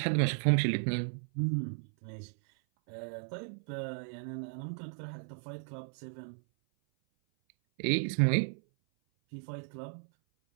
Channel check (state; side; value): silent; left; 55 dB below the other